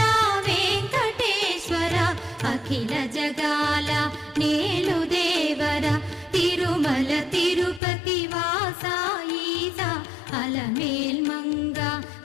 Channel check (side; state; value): right; drops out; at 7.8 s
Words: వెంకటేశ్వర అఖిల జగాల నేలు దేవర తిరుమల తిరుపతి వాస ఈస అలమేల్మంగ